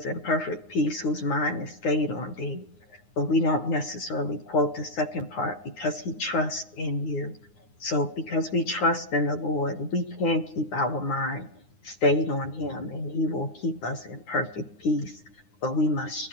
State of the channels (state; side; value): late; right; 9.7 ms